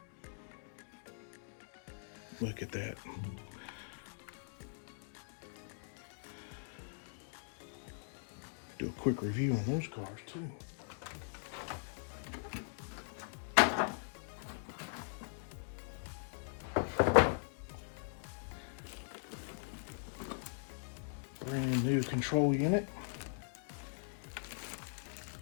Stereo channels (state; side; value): silent; right; digital silence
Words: Look at that. Do a quick review on those cars too. Brand new control unit.